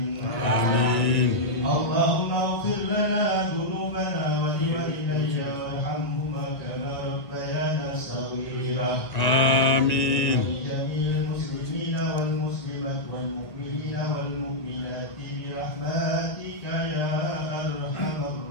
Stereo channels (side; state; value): right; late; 1.9 ms